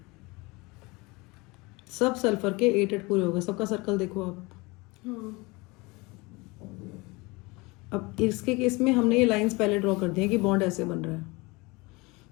सब सल्फर के 8 पूरे हो गए। सबका सर्कल देखो आप। अब इसके केस में हमने ये लाइंस पहले ड्रॉ कर दी हैं कि बॉन्ड ऐसे बन रहा है,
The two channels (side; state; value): right; quieter; 24.9 dB